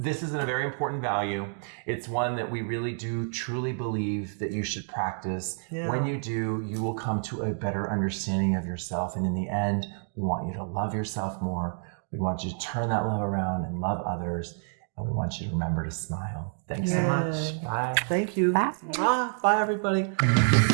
is a very important value. It's one that we really do truly believe that you should practice. When you do, you will come to a better understanding of yourself. And in the end, we want you to love yourself more. We want you to turn that love around and love others. And we want you to remember to smile. Thanks so much. Bye. Thank you. Bye. Bye, everybody.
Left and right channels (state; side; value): silent; left; digital silence